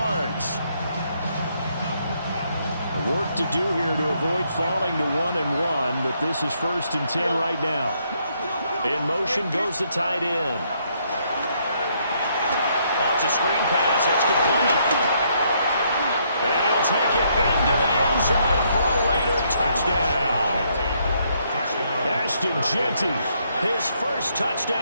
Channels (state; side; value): inverted; both; correlation -0.72